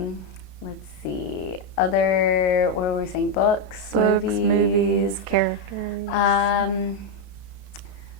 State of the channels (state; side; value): late; right; 30 ms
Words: see, what were we saying? Books, movies, characters.